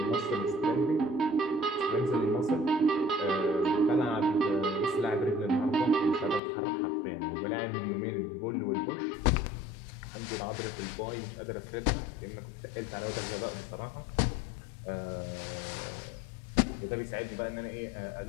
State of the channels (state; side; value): drops out; right; at 6.4 s